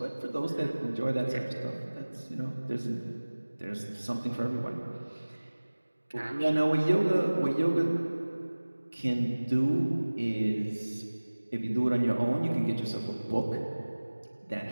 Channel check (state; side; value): inverted; both; correlation -1.00